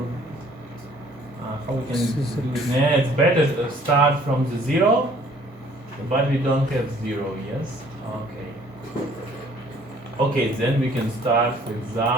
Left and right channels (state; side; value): normal; both; correlation 0.57